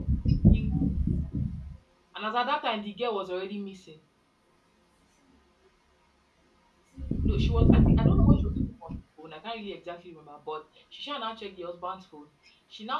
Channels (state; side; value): identical; both; correlation 1.00